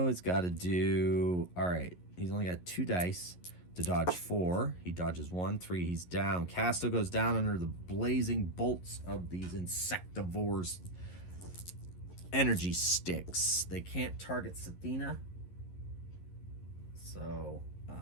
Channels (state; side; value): late; right; 11 ms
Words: has got to do... All right, he's only got 2 dice to dodge 4. He dodges 1, 3. He's down. Casto goes down under the blazing bolts of these insectivores' energy sticks. They can't target Sathina. So,